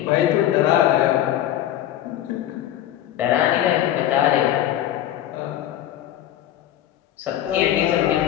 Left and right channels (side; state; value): right; quieter; 12.2 dB